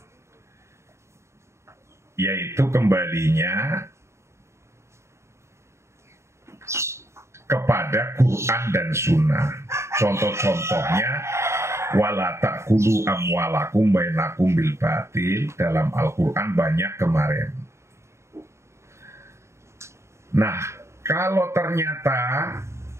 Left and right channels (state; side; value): late; left; 0.13 ms